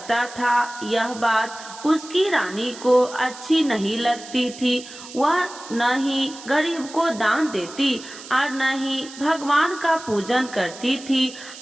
था। यह बात उसकी रानी को अच्छी नहीं लगती थी। वह न ही गरीब को दान देती और न ही भगवान का पूजन करती थी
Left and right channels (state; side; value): noise; right; hiss, 15 dB below the sound